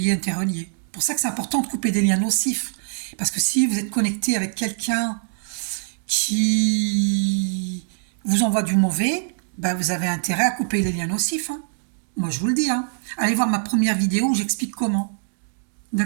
interrelié. C'est pour ça que c'est important de couper des liens nocifs. Parce que si vous êtes connecté avec quelqu'un qui vous envoie du mauvais, ben vous avez intérêt à couper les liens nocifs. Hein. Moi, je vous le dis. Hein. Allez voir ma première vidéo où j'explique comment.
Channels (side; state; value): left; silent; digital silence